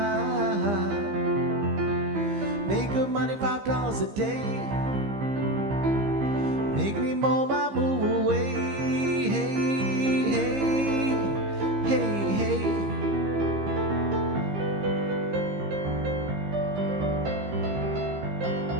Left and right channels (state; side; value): late; left; 15 ms